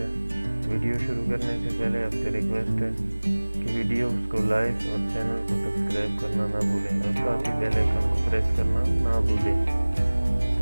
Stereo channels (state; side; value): inverted; both; correlation -1.00